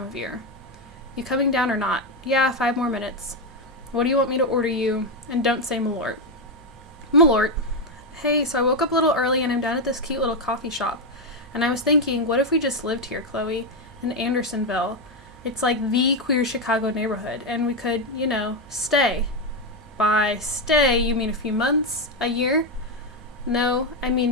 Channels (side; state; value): both; normal; correlation 0.07